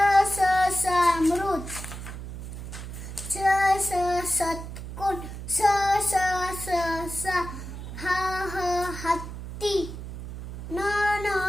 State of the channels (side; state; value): right; noise; hum, 9 dB below the sound